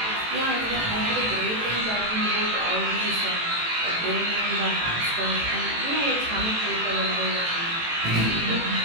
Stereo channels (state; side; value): late; left; 18 ms